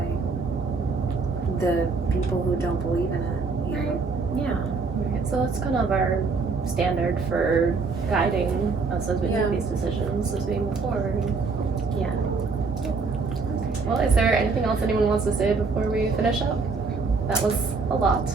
the people who don't believe in it. Yeah. Right, so that's kind of our standard for guiding us as we make these decisions as we move forward. Well, is there anything else anyone wants to say before we finish up? That was a lot.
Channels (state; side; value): quieter; left; 4.4 dB